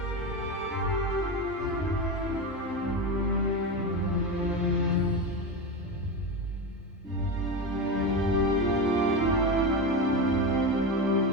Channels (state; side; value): normal; both; correlation 0.19